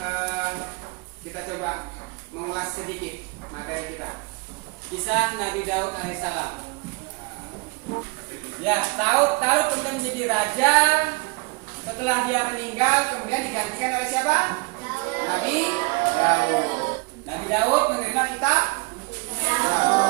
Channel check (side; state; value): left; quieter; 27.8 dB